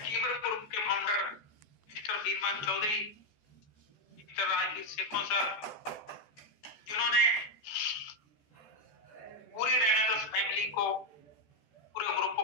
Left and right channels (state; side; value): late; right; 14 ms